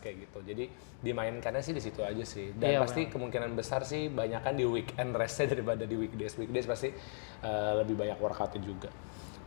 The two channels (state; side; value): silent; right; digital silence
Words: gitu. Jadi dimainkannya sih di situ aja sih. Dan pasti kemungkinan besar sih banyakan di weekend restnya daripada di weekdays. Weekdays pasti lebih banyak workoutnya juga.